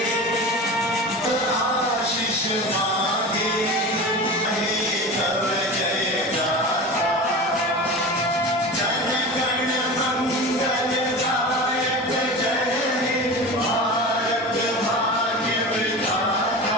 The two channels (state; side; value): normal; both; correlation 0.31